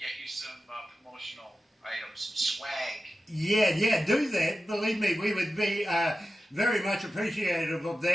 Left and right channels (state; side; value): normal; both; correlation 0.93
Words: you some promotional items, some swag. Yeah, do that. Believe me, we would be very much appreciative of